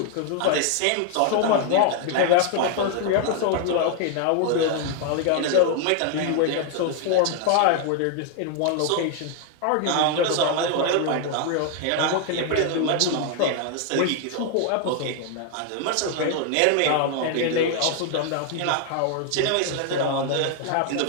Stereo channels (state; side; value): different; both; correlation 0.00